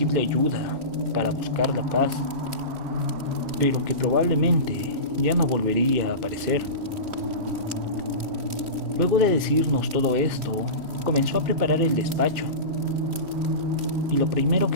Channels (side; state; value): left; late; 3.1 ms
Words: ayuda para buscar la paz, pero que probablemente ya no volvería a aparecer. Luego de decirnos todo esto, comenzó a preparar el despacho, y lo primero